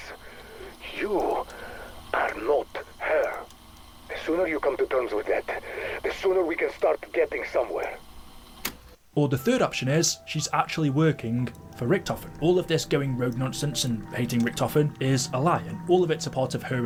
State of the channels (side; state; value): both; identical; correlation 1.00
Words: You are not her. The sooner you come to terms with that, the sooner we can start getting somewhere. Or the third option is, she's actually working for Richtofen. All of this going rogue nonsense and hating Richtofen is a lie, and all of it's a part of her